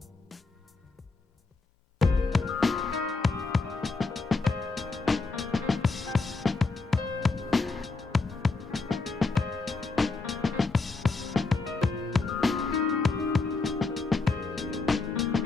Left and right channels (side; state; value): right; quieter; 3.8 dB